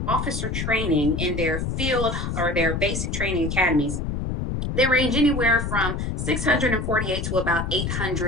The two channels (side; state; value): left; noise; rumble, 2 dB below the sound